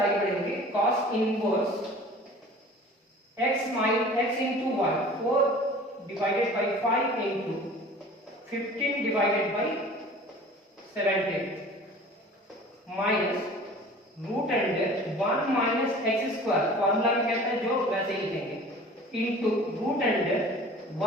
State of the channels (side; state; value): both; normal; correlation 0.44